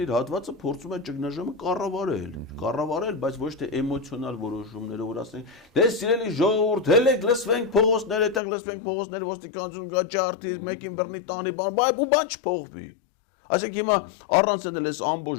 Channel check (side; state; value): right; drops out; at 8.4 s